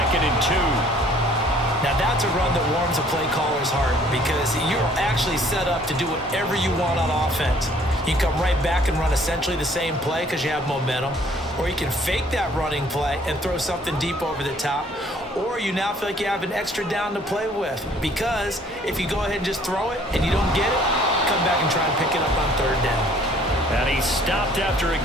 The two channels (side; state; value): both; normal; correlation 0.58